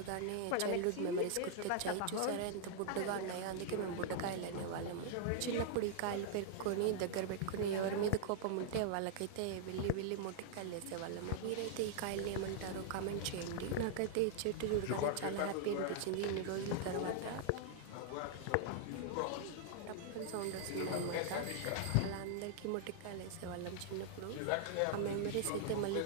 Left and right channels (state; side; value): different; both; correlation -0.01